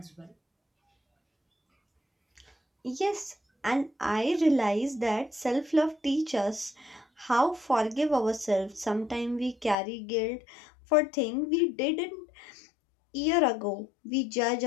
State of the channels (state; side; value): drops out; right; at 9.8 s